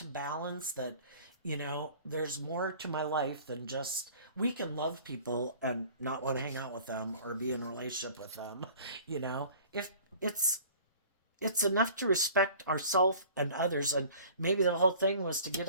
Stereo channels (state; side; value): inverted; both; correlation -0.48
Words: balance. That there's more to my life than just we can love people and not want to hang out with them or be in a relationship with them. If it's enough to respect ourselves and others, and maybe the whole thing was to